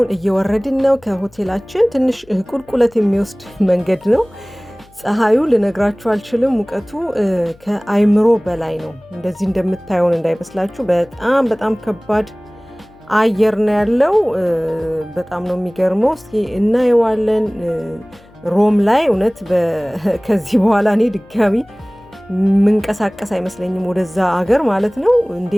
እየወረድን ነው ከሆቴላችን። ትንሽ ቁልቁለት የሚወስድ መንገድ ነው። ፀሐዩ ልነግራችሁ አልችልም። ሙቀቱ ከአይምሮ በላይ ነው። እንደዚህ እንደምታዩን እንዳይመስላችሁ። በጣም ከባድ አየር ነው ያለው። በጣም ነው የሚገርመው። እስኪ እናየዋለን። ሮም ላይ እውነት ከዚህ በኋላ እኔ ድጋሚ ምንቀሳቀስ አይመስለኝም ወደዛ አገር ማለት ነው።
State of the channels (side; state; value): left; noise; hum, 28 dB below the sound